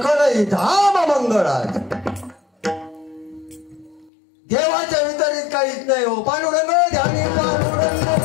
धाम मंगळात देवाच्या वितरित काहीच नाही हो पांडुरंग ध्यानी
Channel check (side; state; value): right; drops out; at 4.1 s